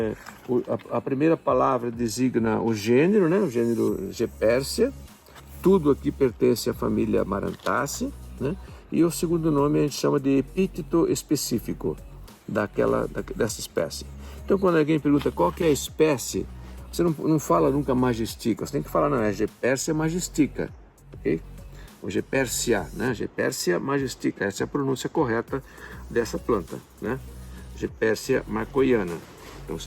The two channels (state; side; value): identical; both; correlation 1.00